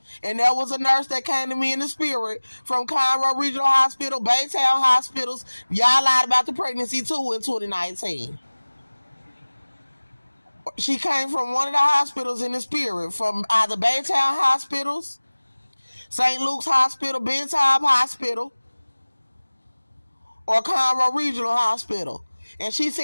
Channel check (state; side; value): inverted; both; correlation -1.00